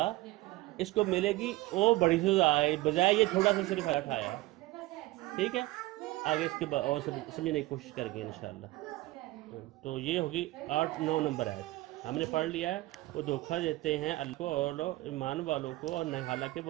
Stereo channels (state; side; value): quieter; left; 18.6 dB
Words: اس کو ملے گی، وہ بڑی سزا ہے، بجائے یہ تھوڑا سا صرف اٹھایا ہے۔ ٹھیک ہے، آگے اس کے بعد اور سمجھنے کی کوشش کریں گے انشاءاللہ۔ تو یہ ہوگی 8-9 نمبر آیت ہم نے پڑھ لیا ہے۔ وہ دھوکہ دیتے ہیں اللہ کو اور ایمان والوں کو، اور حالانکہ